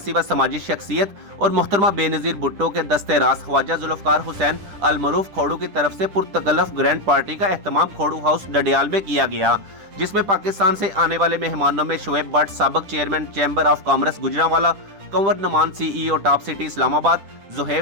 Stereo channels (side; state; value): left; late; 10 ms